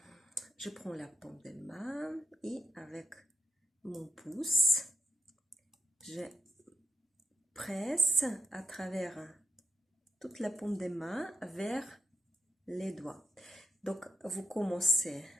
Je prends la paume de main et avec mon pouce, je presse à travers toute la paume de main vers les doigts. Donc, vous commencez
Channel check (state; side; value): normal; both; correlation 0.80